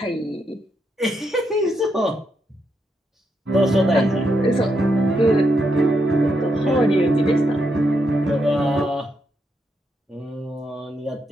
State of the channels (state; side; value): normal; both; correlation 0.81